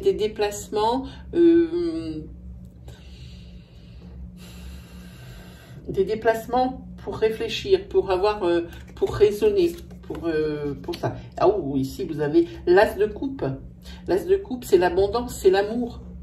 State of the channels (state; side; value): identical; both; correlation 1.00